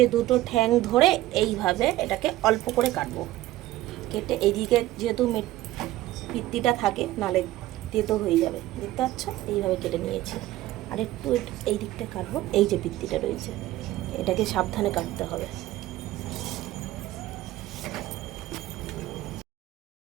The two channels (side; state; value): left; quieter; 15.7 dB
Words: দুটো ঠ্যাং ধরে এইভাবে এটাকে অল্প করে কাটবো, কেটে এইদিকে যেহেতু পিত্তিটা থাকে, নালে তেতো হয়ে যাবে, দেখতে পাচ্ছ? এইভাবে কেটে নিয়েছি। আর একটু এই দিকটা কাটবো, এই যে পিত্তিটা রয়েছে এটাকে সাবধানে কাটতে হবে।